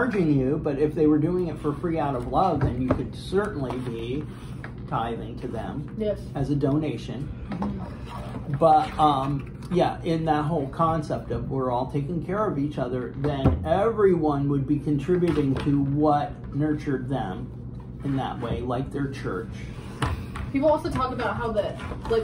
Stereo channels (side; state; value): both; identical; correlation 1.00